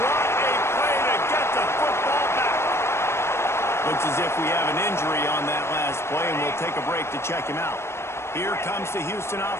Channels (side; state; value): right; late; 0.12 ms